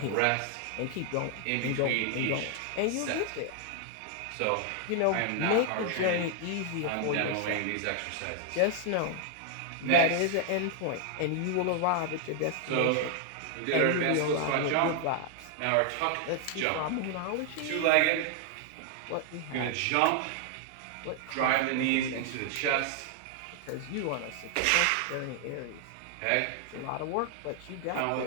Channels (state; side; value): different; both; correlation 0.00